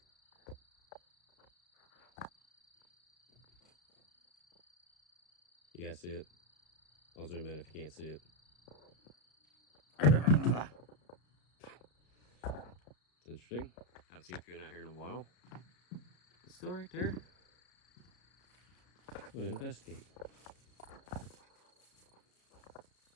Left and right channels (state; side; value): late; right; 33 ms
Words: You guys see it? I'll zoom in if you can't see it. It's interesting. Haven't seen Coon out here in a while. It's still right there. I'm gonna investigate.